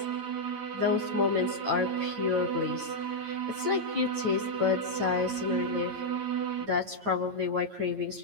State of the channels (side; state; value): left; late; 9.0 ms